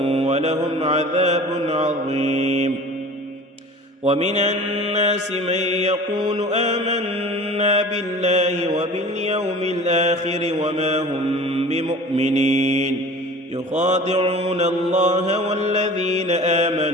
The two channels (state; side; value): normal; both; correlation 0.41